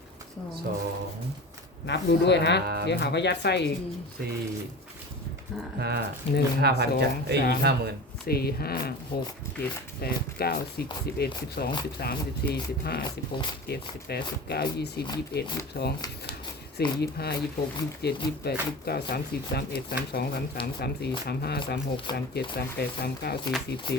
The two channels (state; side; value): normal; both; correlation 0.33